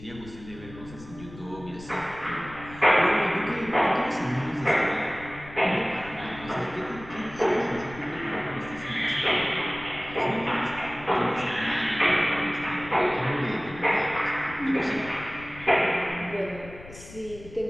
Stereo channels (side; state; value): left; noise; rumble, 17 dB below the sound